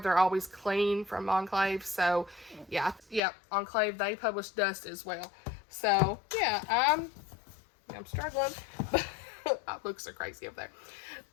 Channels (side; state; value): right; drops out; at 3.2 s